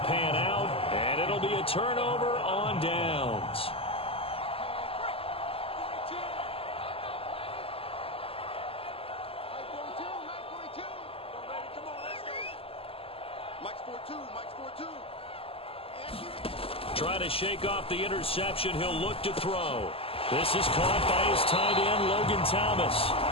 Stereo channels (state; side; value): late; right; 0.27 ms